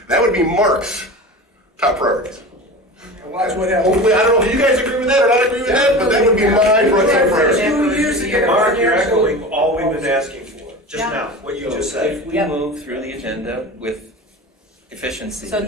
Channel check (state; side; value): normal; both; correlation 0.32